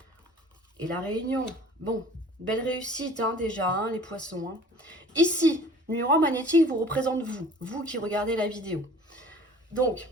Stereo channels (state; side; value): normal; both; correlation 0.48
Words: Et la réunion. Bon, belle réussite déjà, les poissons. Ici, numéro 1 magnétique vous représente vous. Vous qui regardez la vidéo. Donc,